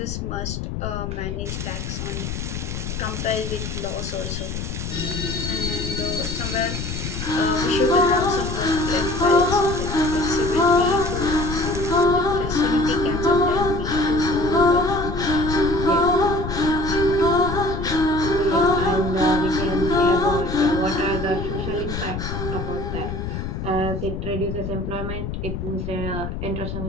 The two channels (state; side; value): noise; left; rumble, 5 dB below the sound